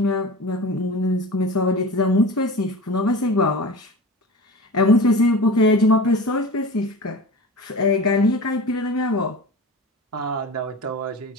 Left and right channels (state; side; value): normal; both; correlation 0.33